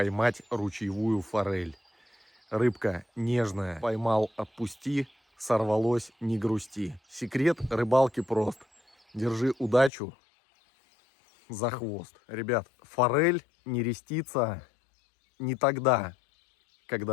ручьевую форель. Рыбка нежная, поймал, отпусти, сорвалось, не грусти. Секрет рыбалки прост. Держи удачу за хвост. Ребят, форель нерестится не тогда,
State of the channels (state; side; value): drops out; right; at 9.9 s